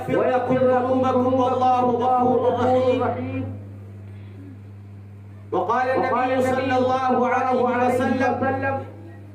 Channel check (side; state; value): both; identical; correlation 1.00